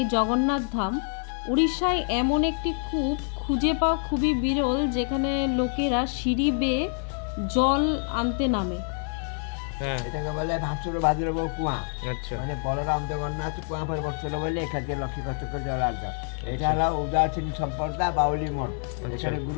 জগন্নাথ ধাম উড়িষ্যায় এমন একটি কূপ খুঁজে পাওয়া খুবই বিরল, যেখানে লোকেরা সিঁড়ি বেয়ে জল আনতে নামে। এটাকে বলে ভাসুর বাজুর কুয়া। মানে বলরাম জগন্নাথ কুয়া পরে বসছিল বলে এখান থেকে লক্ষ্মী কষ্ট করে জল আনতাম। এটা হলো উদাসীন সম্প্রদায় বাউলি মঠ। এখানে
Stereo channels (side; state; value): right; silent; 56 dB below the other